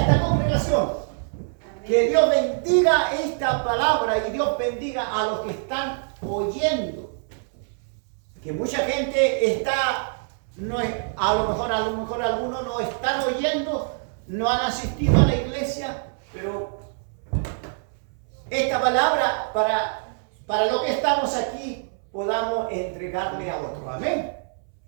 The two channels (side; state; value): left; silent; 62 dB below the other